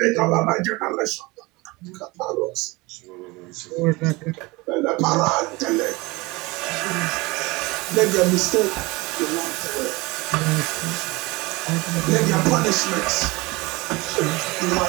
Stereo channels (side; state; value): left; quieter; 23.6 dB